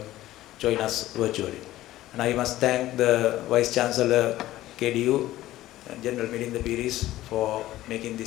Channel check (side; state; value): right; quieter; 15.3 dB